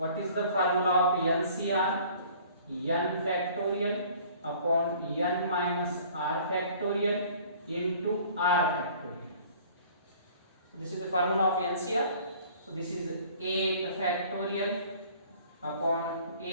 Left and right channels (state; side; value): inverted; both; correlation -0.51